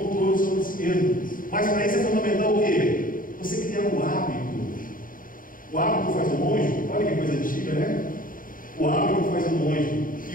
sobre si mesmo. Mas para isso é fundamental o quê? Você criar um hábito. O hábito faz o monge. Olha que coisa antiga, né? O hábito faz o monge.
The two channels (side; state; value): right; late; 0.40 ms